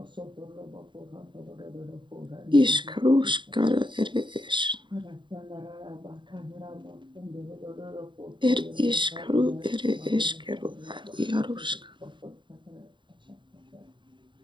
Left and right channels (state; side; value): late; left; 0.23 ms